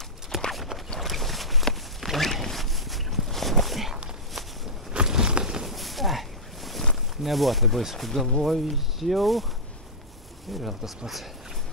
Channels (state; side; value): normal; both; correlation -0.12